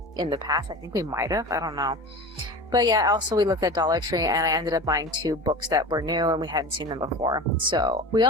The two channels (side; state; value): both; normal; correlation 0.32